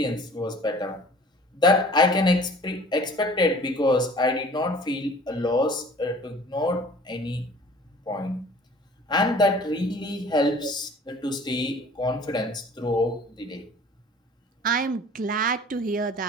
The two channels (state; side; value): normal; both; correlation 0.48